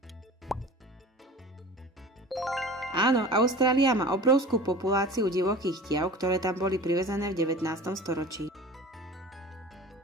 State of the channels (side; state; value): both; normal; correlation 0.38